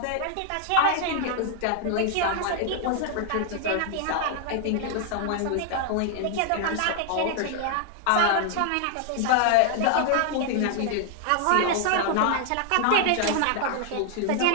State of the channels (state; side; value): different; both; correlation 0.00